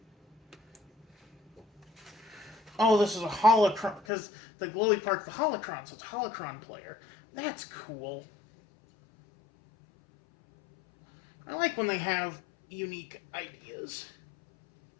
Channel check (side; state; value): right; drops out; at 4.0 s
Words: Oh, this is a holocron, because the glowy part's the holocron, so it's a holocron player. That's cool. I like when they have unique ideas.